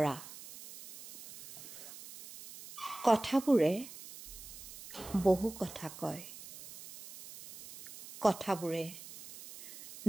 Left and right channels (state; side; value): noise; right; hiss, 15 dB below the sound